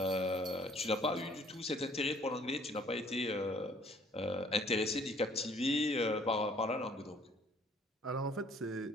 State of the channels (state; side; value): normal; both; correlation 0.59